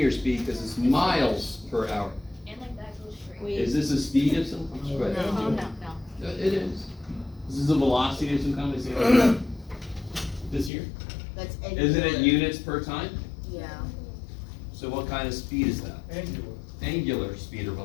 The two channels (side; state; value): right; drops out; at 10.7 s